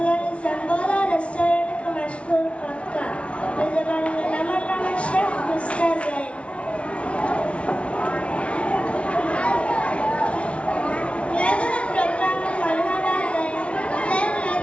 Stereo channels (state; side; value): late; right; 0.061 ms